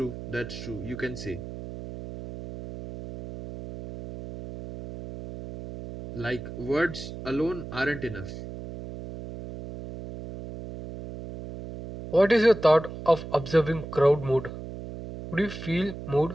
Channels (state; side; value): noise; right; hum, 10 dB below the sound